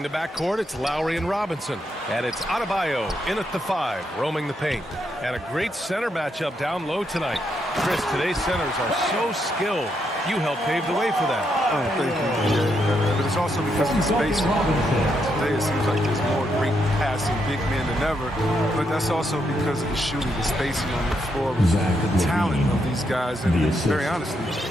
the backcourt, it's Lowry and Robinson. And it's Adebayo in at the 5, roaming the paint. And a great center matchup down low tonight. Chris, today's centers are so skilled. You helped pave the way for that. Oh, thank you. Yeah, but it's also because of the spacing. Today it seems like there's more great passing big men than ever, but that's also because of the shooting, the spacing on the floor, the talent of these guys, and very honestly,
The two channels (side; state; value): both; normal; correlation 0.79